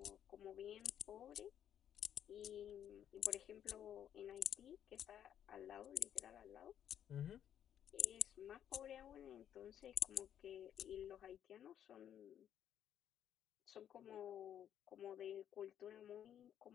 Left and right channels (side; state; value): right; quieter; 9.9 dB